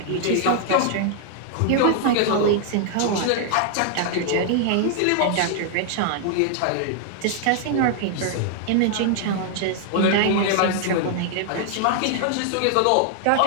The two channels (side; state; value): both; different; correlation 0.00